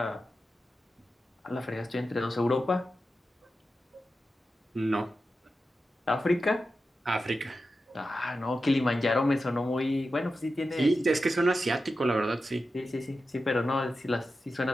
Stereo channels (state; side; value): normal; both; correlation 0.91